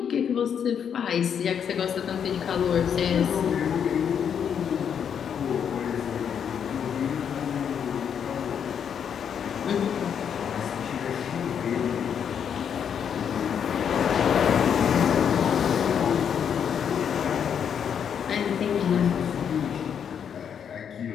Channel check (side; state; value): right; quieter; 7.9 dB